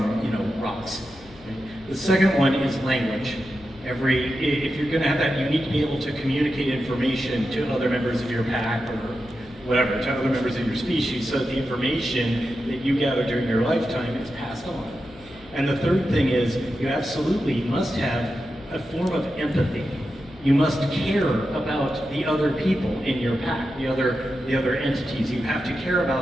rocks. Right? The second one is language. If you're going to have that, you need to be able to communicate information to other members of your pack or whatever, to other members of your species, so that the information that you gather during your lifetime is passed on. And the third thing is, you absolutely must have a form of empathy. You must care about the other people in your pack, the other entities. You have to care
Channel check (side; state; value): left; noise; hum, 23 dB below the sound